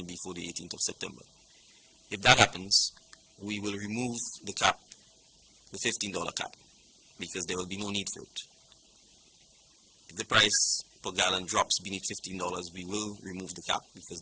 before the 18th of September. If that happens, we will remove the cap, the $15 cap, because there will be no need for it. If the price per gallon drops beneath $15, we will remove the cap because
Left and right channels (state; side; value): identical; both; correlation 1.00